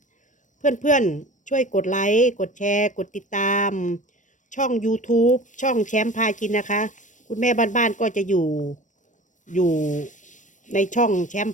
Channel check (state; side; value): late; right; 0.37 ms